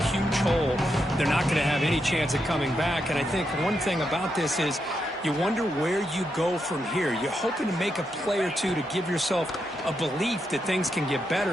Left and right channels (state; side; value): normal; both; correlation 0.83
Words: hole. They're not going to have any chance of coming back. And I think one thing about this is you wonder where you go from here. You're hoping to make a play or two to give yourself a belief that things can get